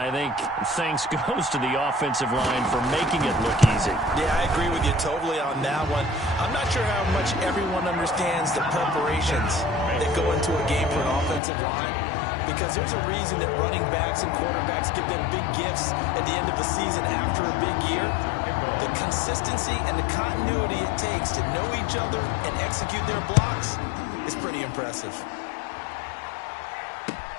think thanks goes to the offensive line for making it look easy. Yeah, I agree with you totally on that one. I'm not sure how much everyone understands the preparations that go into a game for an offensive line, because there's a reason that running backs and quarterbacks give them big gifts at the end of the season after a big year. The consistency and the continuity it takes to know each other and execute their blocks is pretty impressive.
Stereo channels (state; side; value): drops out; right; at 11.4 s